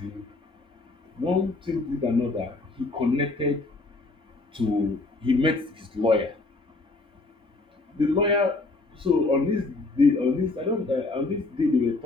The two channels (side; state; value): right; quieter; 3.3 dB